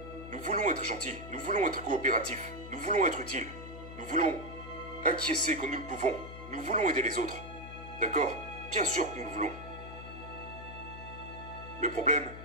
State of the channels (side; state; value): left; noise; hum, 12 dB below the sound